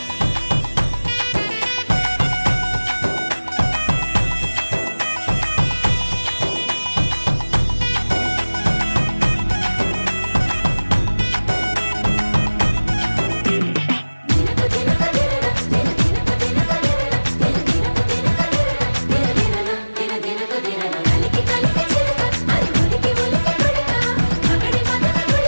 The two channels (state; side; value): inverted; both; correlation -1.00